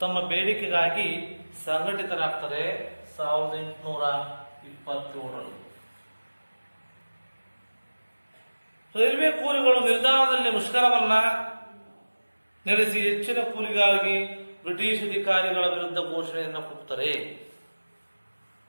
ತಮ್ಮ ಬೇಡಿಕೆಗಾಗಿ ಸಂಘಟಿತರಾಗ್ತಾರೆ 1827ರಲ್ಲಿ. ರೈಲ್ವೆ ಕೂಲಿಗಳು ನಿಲ್ದಾಣದಲ್ಲಿ ಮುಷ್ಕರವನ್ನ ನಡೆಸಿ ಹೆಚ್ಚಿನ ಕೂಲಿಗಾಗಿ ಬ್ರಿಟಿಷ್ ಅಧಿಕಾರಿಗಳ ವಿರುದ್ಧ ಘೋಷಣೆಯನ್ನು ಕೂಗ್ತಾರೆ.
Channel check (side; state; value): both; inverted; correlation -1.00